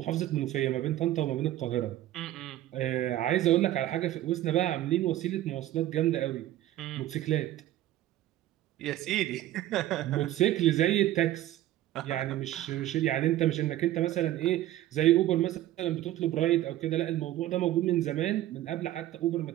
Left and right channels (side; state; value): left; quieter; 14.0 dB